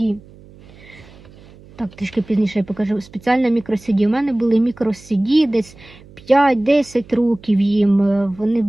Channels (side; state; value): right; noise; hum, 23 dB below the sound